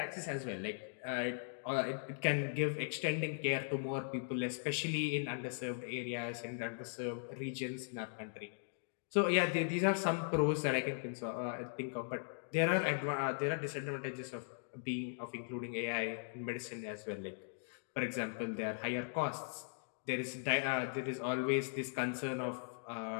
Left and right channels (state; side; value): silent; right; digital silence